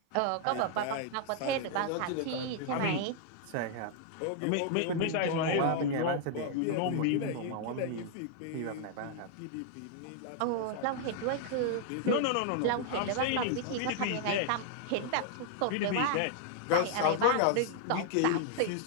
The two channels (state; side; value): different; both; correlation 0.00